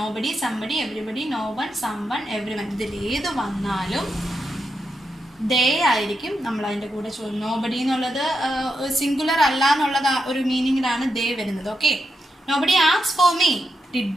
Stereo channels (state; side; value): normal; both; correlation 0.85